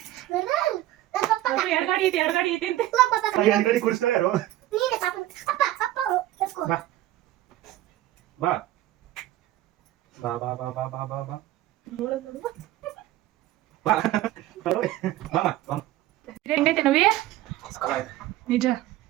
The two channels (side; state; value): left; quieter; 14.9 dB